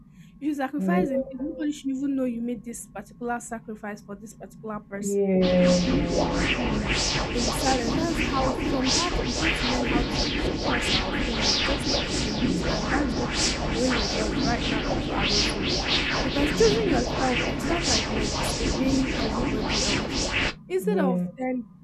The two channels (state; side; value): identical; both; correlation 1.00